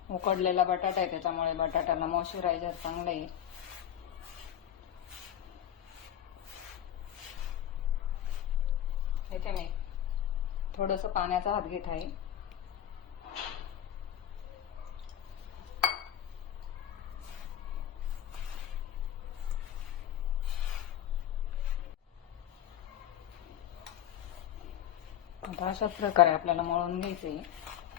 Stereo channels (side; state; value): right; quieter; 10.6 dB